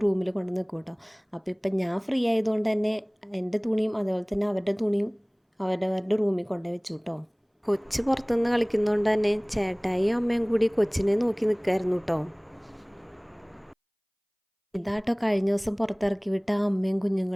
റൂമിൽ കൊണ്ടു വെക്കും കേട്ടോ. അപ്പോൾ ഇപ്പം ഞാൻ ഫ്രീ ആയതുകൊണ്ട് തന്നെ എൻ്റെ തുണിയും അതുപോലെ തന്നെ അവരുടെ തുണിയും അവരവരുടെ റൂമിൽ കൊണ്ടുപോയി വെച്ചു കേട്ടോ. കൊച്ച് പുറത്തുനിന്ന് കളിക്കുന്നതുകൊണ്ട് തന്നെ ചേട്ടായിയും അമ്മയും കൂടി കൊച്ചിനെ നോക്കി നിൽക്കായിരുന്നു കേട്ടോ. ഇതാട്ടോ കഴിഞ്ഞ ദിവസം പുറത്തിറക്കി വിട്ട അമ്മയും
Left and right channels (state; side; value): identical; both; correlation 1.00